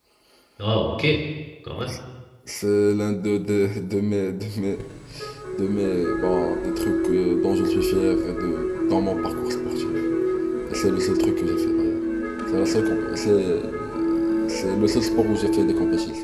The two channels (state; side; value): identical; both; correlation 1.00